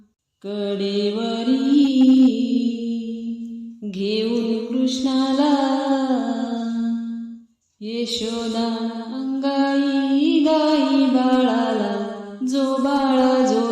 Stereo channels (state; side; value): identical; both; correlation 1.00